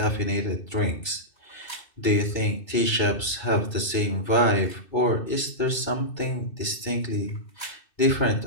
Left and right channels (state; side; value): late; right; 2.6 ms